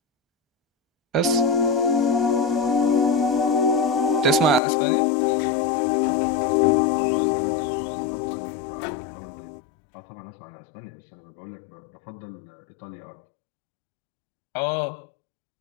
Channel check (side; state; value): right; drops out; at 4.6 s